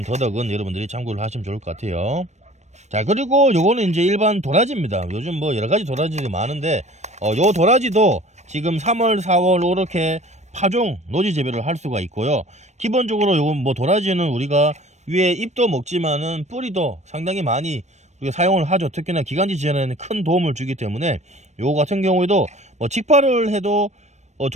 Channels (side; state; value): left; late; 0.33 ms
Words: 더덕은 여러분들이 참고를 하시면 좋을 것 같아요. 자, 그리고 요거는 이제 일반 도라지입니다. 요즘 뭐 여러가지 도라지들이 많은데 요 도라지도 지금 3월 4월 이렇게 파종 노지 재배를 할 수가 있고요. 기본적으로 요건 뭐 도라지는 우리가 위에 잎도 먹지만은 뿌리도 상당히 많이 우리가 사용을 하죠. 특히나 기관지 지원에는 큰 도움을 주기 때문에 요거 같은 경우에도 뭐 직파를 해도